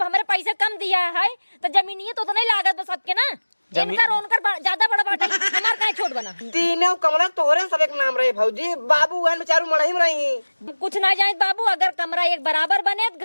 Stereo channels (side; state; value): both; inverted; correlation -1.00